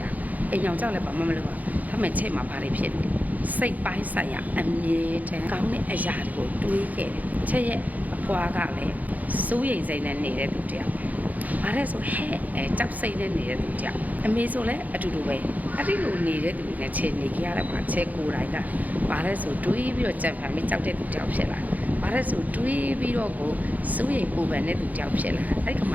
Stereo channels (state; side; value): late; left; 0.079 ms